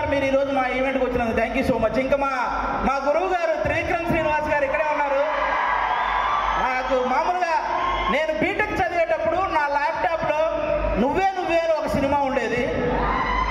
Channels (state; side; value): identical; both; correlation 1.00